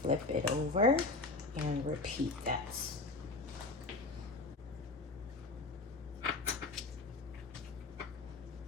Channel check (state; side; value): quieter; right; 3.4 dB